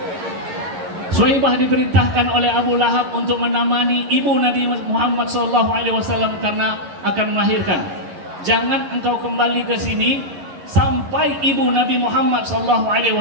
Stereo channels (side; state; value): left; late; 11 ms